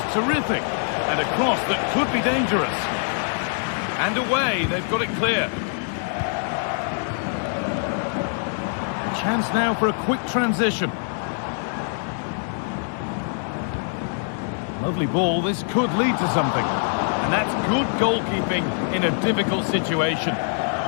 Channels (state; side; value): silent; right; 63 dB below the other